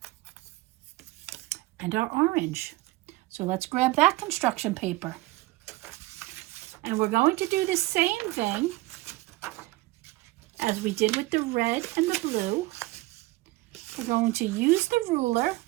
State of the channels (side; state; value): left; quieter; 20.1 dB